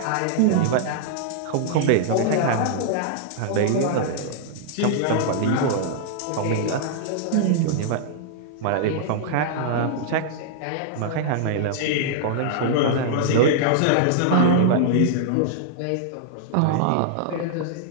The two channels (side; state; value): both; different; correlation -0.01